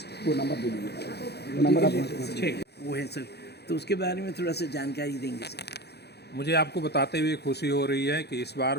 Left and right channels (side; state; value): right; late; 0.48 ms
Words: को नंबर दे दीजिए, नंबर आप वो है सर, तो उसके बारे में थोड़ा सा जानकारी देंगे सर। मुझे आपको बताते हुए खुशी हो रही है कि इस बार